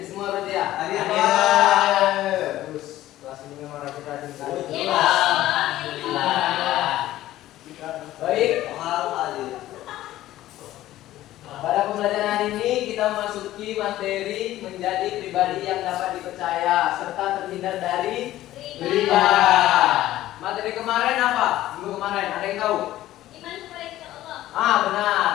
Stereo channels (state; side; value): quieter; right; 14.6 dB